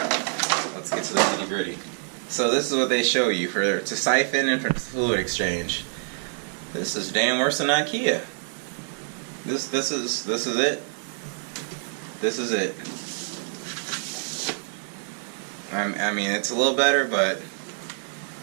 Let's get to the nitty-gritty. So this is what they show you to siphon and for fluid exchange. This is damn worse than IKEA. This is it. This is it. I mean, it's a little better, but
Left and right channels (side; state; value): left; silent; digital silence